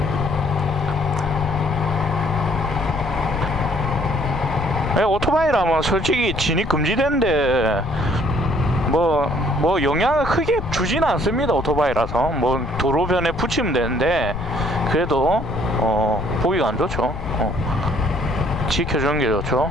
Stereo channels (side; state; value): left; noise; rumble, 8 dB below the sound